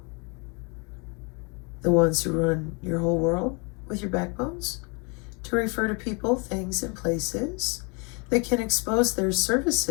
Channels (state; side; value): quieter; right; 32.4 dB